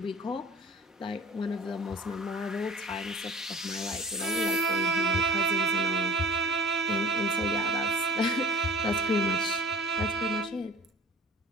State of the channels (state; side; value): normal; both; correlation 0.45